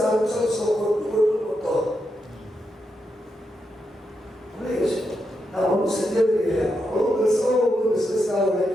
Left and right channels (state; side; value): normal; both; correlation 0.84